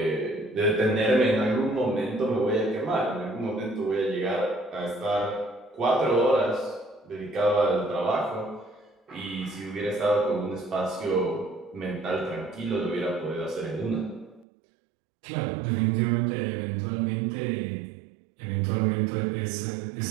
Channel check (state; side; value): drops out; left; at 14.5 s